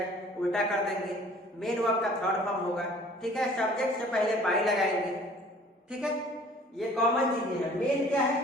उल्टा कर देंगे। मेन वर्ब का थर्ड फॉर्म होगा, ठीक है। सब्जेक्ट से पहले बाई लगाएंगे, ठीक है। ये कॉमन चीजें हैं। मेन क्या है,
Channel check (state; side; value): normal; both; correlation 0.52